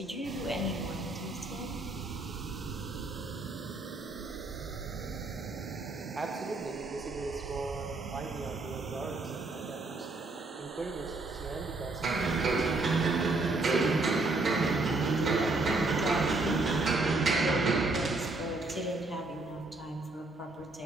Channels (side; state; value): left; quieter; 3.2 dB